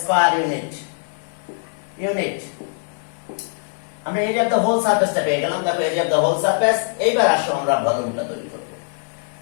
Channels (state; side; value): silent; right; 60 dB below the other